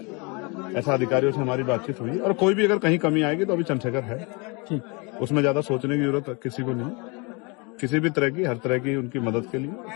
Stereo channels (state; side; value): quieter; right; 30.1 dB